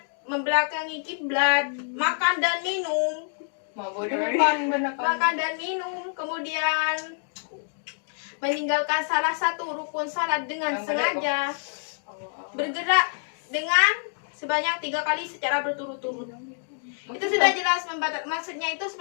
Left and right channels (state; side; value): silent; right; 59 dB below the other